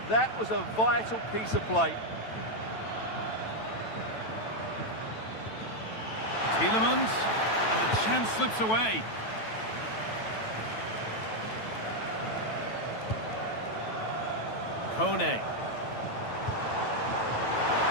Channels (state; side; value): late; right; 9.1 ms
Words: That was a vital piece of play. Tielemans, and the chance slips away. Kone.